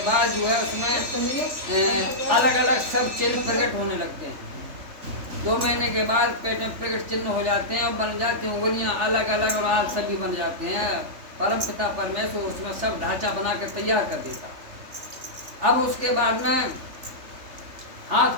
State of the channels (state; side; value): late; left; 3.4 ms